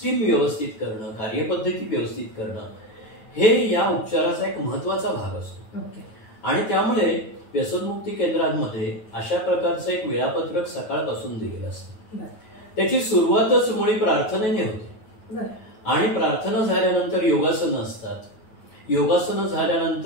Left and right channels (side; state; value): right; late; 9.3 ms